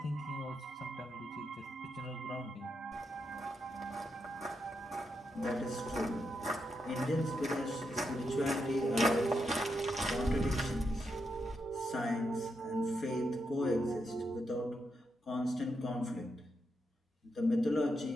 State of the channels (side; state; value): both; normal; correlation 0.83